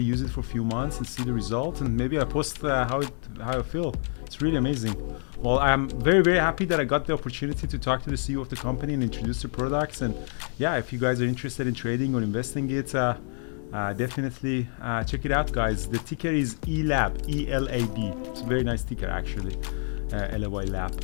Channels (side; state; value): right; silent; 56 dB below the other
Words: use it for a few months and see the results, and maybe I post how I feel. It's really amazing. Well, I'm very, very happy that I got the opportunity to talk to the CEO of the company and introduce the products. And yeah, if you guys are interested in trading or investing it, definitely check it out, guys. The ticker is ELAB, E-L-A-B. It's a very nice ticker, actually, ELEVAI Lab.